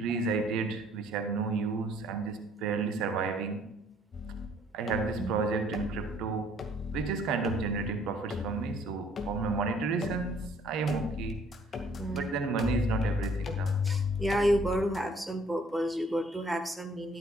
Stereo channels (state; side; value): normal; both; correlation 0.60